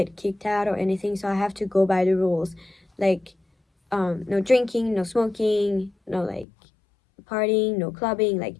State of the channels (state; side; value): drops out; right; at 6.5 s